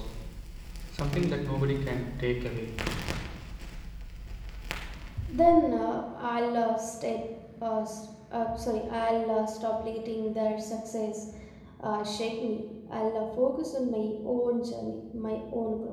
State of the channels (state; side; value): identical; both; correlation 1.00